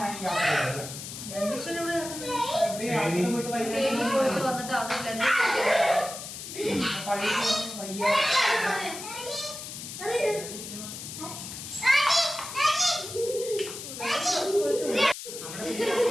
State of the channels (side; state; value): left; noise; hiss, 9 dB below the sound